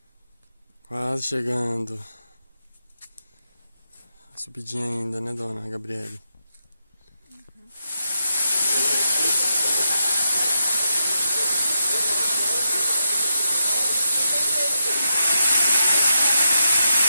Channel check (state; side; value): inverted; both; correlation -0.84